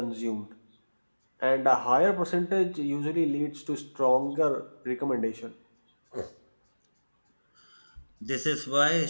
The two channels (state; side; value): inverted; both; correlation -1.00